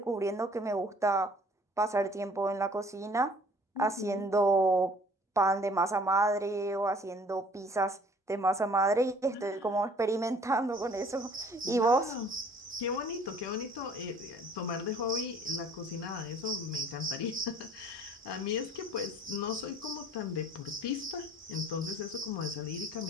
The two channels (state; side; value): normal; both; correlation 0.53